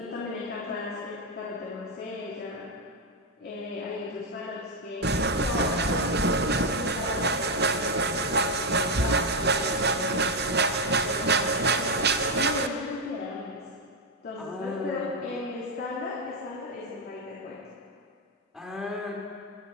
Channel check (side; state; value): both; normal; correlation 0.03